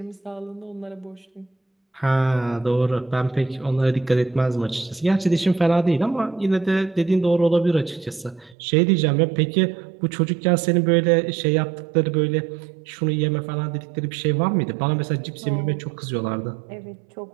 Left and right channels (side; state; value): left; drops out; at 8.6 s